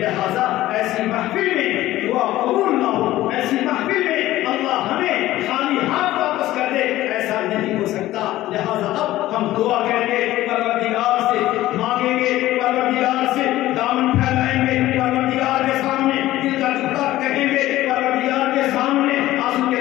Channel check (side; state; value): right; quieter; 15.5 dB